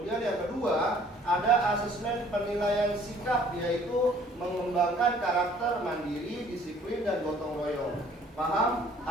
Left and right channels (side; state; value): both; normal; correlation 0.57